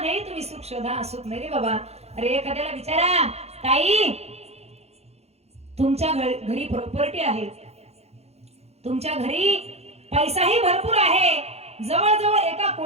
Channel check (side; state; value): left; late; 0.31 ms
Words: तुम्ही सुख शोधा, सुख नाही रे बाबा. अरे एखाद्याला विचारा, ताई तुमच्या घरी प्रॉपर्टी आहे, तुमच्या घरी पैसाही भरपूर आहे, जवळजवळ 1